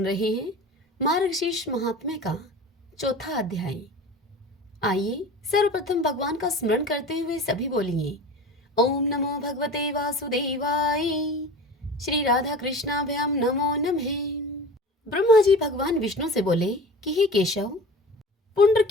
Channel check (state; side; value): normal; both; correlation 0.36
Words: रहे हैं मार्गशीर्ष महात्म्य का चौथा अध्याय। आइए सर्वप्रथम भगवान का स्मरण करते हुए सभी बोलिए, ओम नमो भगवते वासुदेवाय, श्री राधा कृष्णाभ्याम नमो नमः। ब्रह्मा जी भगवान विष्णु से बोले कि हे केशव, पुण्य